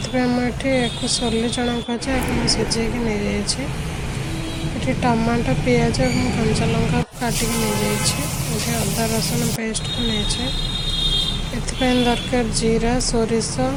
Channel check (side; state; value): both; identical; correlation 1.00